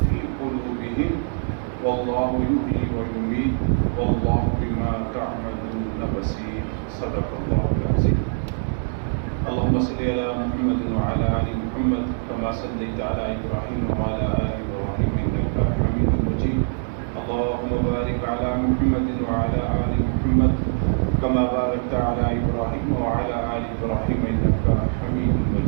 في قلوبهم والله يحيي ويميت والله بما تعملون بصير صدق الله العظيم. اللهم صل على محمد وعلى آل محمد كما صليت على إبراهيم وعلى آل إبراهيم إنك حميد مجيد. اللهم بارك على محمد وعلى آل محمد كما باركت على إبراهيم وعلى آل إبراهيم إنك حميد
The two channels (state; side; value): silent; left; digital silence